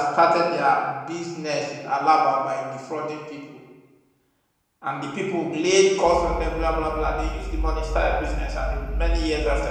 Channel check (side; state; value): both; identical; correlation 1.00